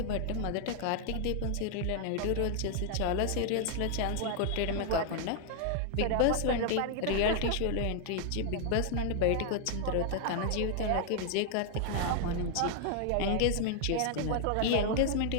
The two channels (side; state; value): both; different; correlation 0.00